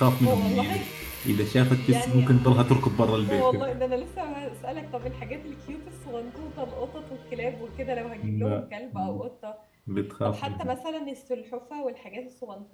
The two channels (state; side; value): identical; both; correlation 1.00